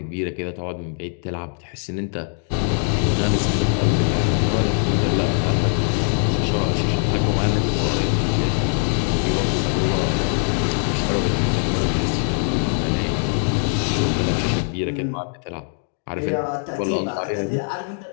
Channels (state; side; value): silent; right; 61 dB below the other